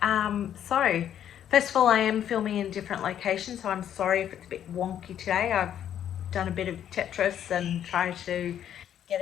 So first of all, I am filming in different locations, so I'm sorry if it's a bit wonky today. I've done a bit of Tetris and tried to get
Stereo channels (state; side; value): quieter; right; 10.1 dB